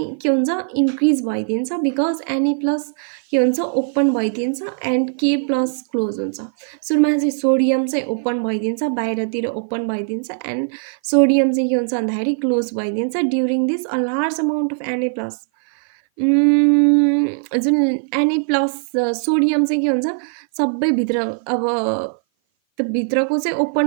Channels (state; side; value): silent; left; 57 dB below the other